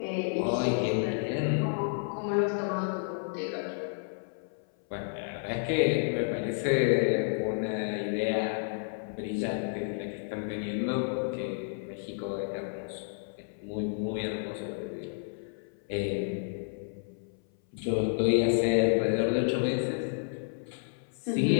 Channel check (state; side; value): silent; right; 57 dB below the other